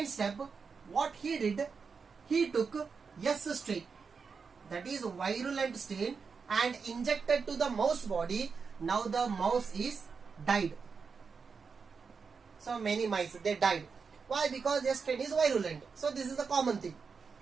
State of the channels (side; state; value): left; quieter; 5.4 dB